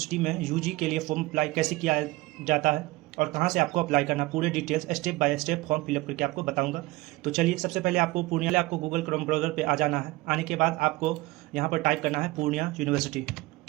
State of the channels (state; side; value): quieter; left; 20.6 dB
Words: में यूजी के लिए फॉर्म अप्लाई कैसे किया जाता है और कहाँ से आपको अप्लाई करना, पूरे details step by step form fill up करके आपको बताऊंगा। तो चलिए, सबसे पहले आपको गूगल क्रोम ब्राउज़र पे आ जाना है। आने के बाद आपको यहाँ पर टाइप करना है पूर्णिया यूनिवर्सिटी।